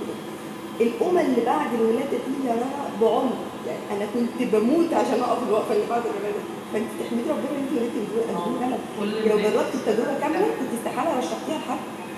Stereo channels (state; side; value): identical; both; correlation 1.00